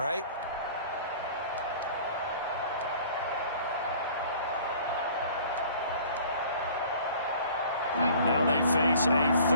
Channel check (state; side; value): inverted; both; correlation -0.49